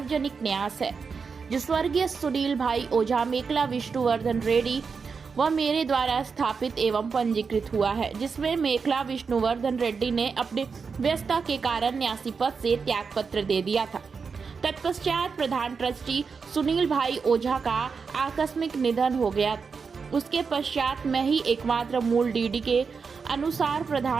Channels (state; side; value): quieter; left; 5.4 dB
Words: न्यास है जो स्वर्गीय सुनील भाई ओझा, मेखला विष्णुवर्धन रेड्डी व मेरे द्वारा स्थापित एवं पंजीकृत हुआ है, जिसमें मेखला विष्णुवर्धन रेड्डी ने अपने व्यस्तता के कारण न्यासी पद से त्याग पत्र दे दिया था। तत्पश्चात प्रधान ट्रस्टी सुनील भाई ओझा का आकस्मिक निधन हो गया। उसके पश्चात मैं ही एकमात्र मूल डीडी के अनुसार